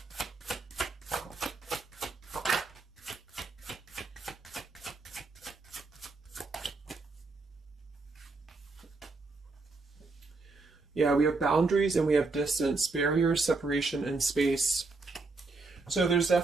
Yeah, we have boundaries and we have distance, barriers, separation, and space. So there's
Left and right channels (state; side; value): quieter; left; 3.7 dB